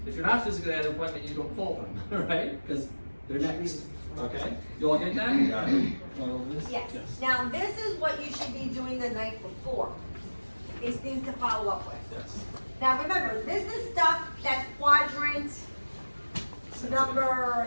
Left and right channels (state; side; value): inverted; both; correlation -1.00